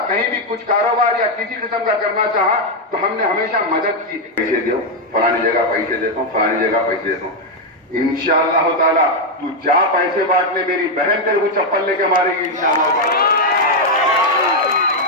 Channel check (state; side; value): normal; both; correlation 0.02